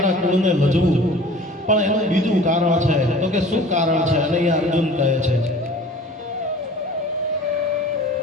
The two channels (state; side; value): normal; both; correlation 0.45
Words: કુળને લજવું, પણ એનું બીજું કારણ છે. તો કે શું કારણ છે? અને અહીંયા અર્જુન કહે છે,